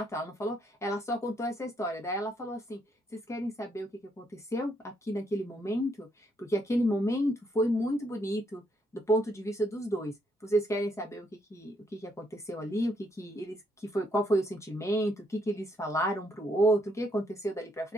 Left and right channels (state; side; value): normal; both; correlation 0.73